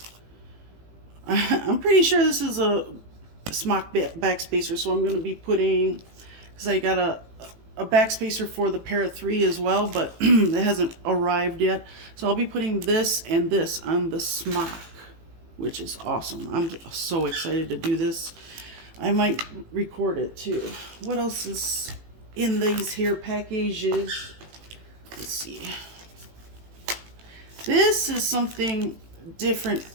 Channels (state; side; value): late; left; 18 ms